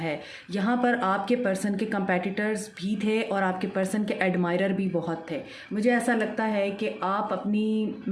यहाँ पर आपके पर्सन के कंपेटिटर्स भी थे और आपके पर्सन के एडमायरर भी बहुत थे। मुझे ऐसा लगता है कि आप अपनी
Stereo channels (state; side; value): identical; both; correlation 1.00